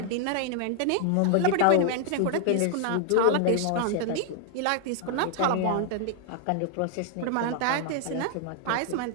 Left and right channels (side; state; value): both; different; correlation 0.00